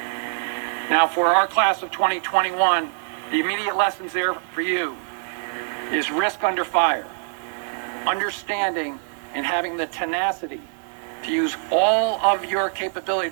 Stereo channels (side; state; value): left; silent; digital silence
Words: Now, for our class of 2021, the immediate lessons there for you is risk under fire, understanding and having the tenacity to use all of your capability